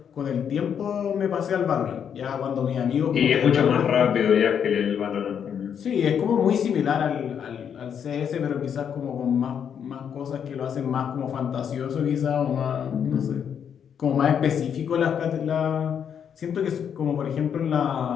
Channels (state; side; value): quieter; right; 8.0 dB